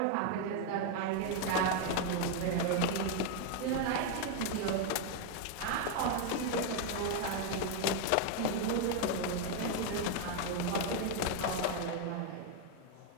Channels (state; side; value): different; both; correlation 0.00